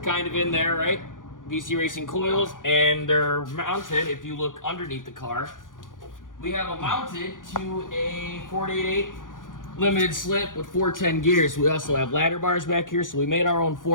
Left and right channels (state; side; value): late; right; 0.88 ms